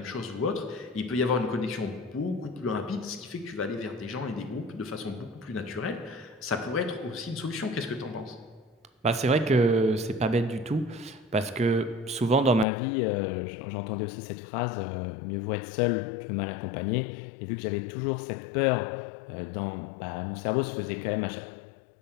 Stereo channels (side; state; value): right; drops out; at 12.7 s